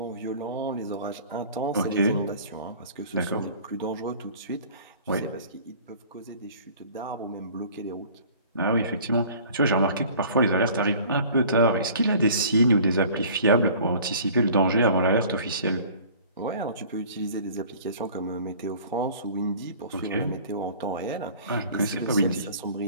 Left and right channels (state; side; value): inverted; both; correlation -0.47